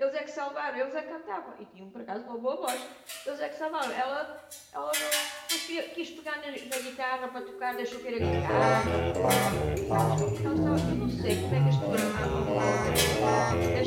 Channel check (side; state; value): both; identical; correlation 1.00